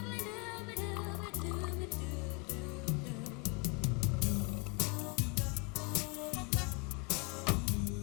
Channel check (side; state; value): right; quieter; 30.3 dB